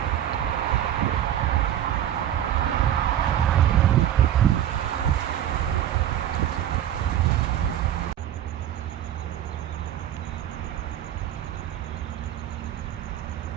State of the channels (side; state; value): left; quieter; 11.2 dB